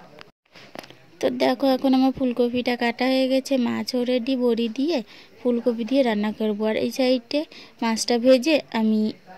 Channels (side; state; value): both; identical; correlation 1.00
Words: তো দেখো, এখন আমার ফুলকপিটা কাটা হয়ে গেছে, মাছও রেডি, বড়ি দিয়ে ফুলকপি দিয়ে রান্না করবো। আর এই সাইডে মাছটা ভেজে আমি